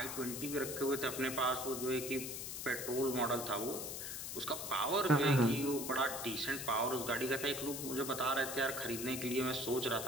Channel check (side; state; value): left; noise; hiss, 6 dB below the sound